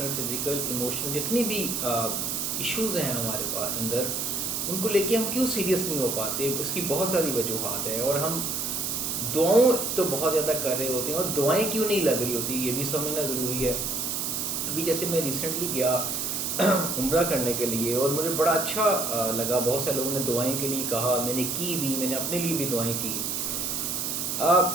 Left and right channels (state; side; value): noise; right; hiss, 1 dB below the sound